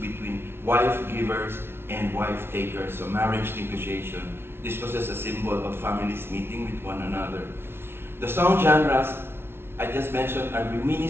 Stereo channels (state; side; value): late; left; 0.12 ms